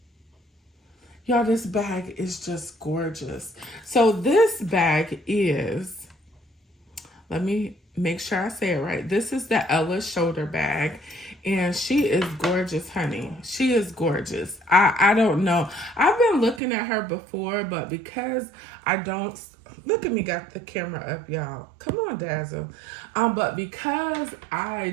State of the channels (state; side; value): drops out; left; at 16.6 s